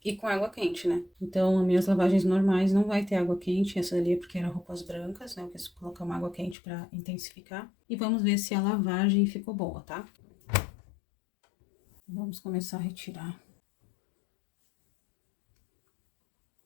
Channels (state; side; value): drops out; right; at 6.6 s